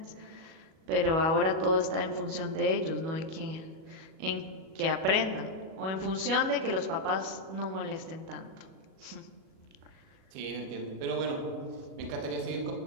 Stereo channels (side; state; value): left; late; 37 ms